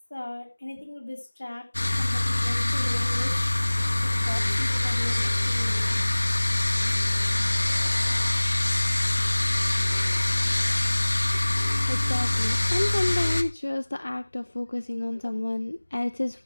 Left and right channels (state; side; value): inverted; both; correlation -1.00